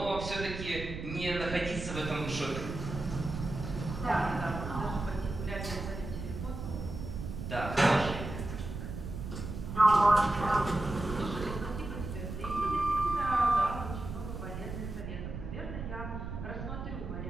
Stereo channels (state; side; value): noise; right; rumble, 7 dB below the sound